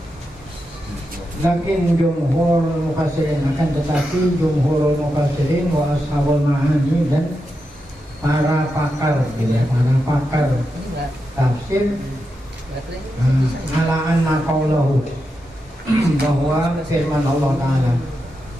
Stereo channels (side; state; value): both; normal; correlation 0.87